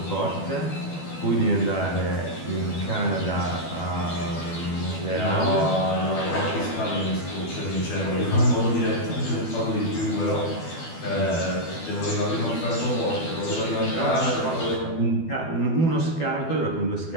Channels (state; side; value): late; right; 12 ms